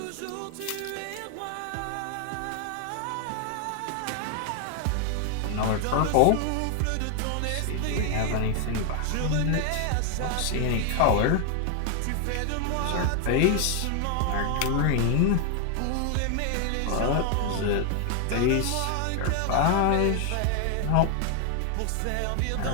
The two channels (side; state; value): both; different; correlation 0.00